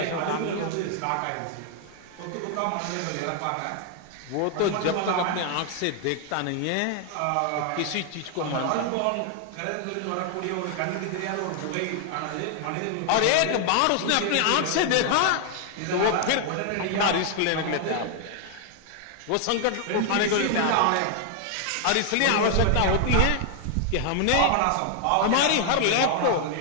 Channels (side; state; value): both; different; correlation 0.00